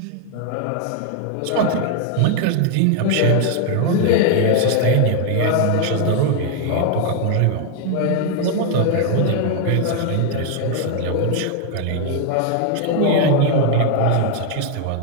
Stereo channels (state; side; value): different; both; correlation 0.00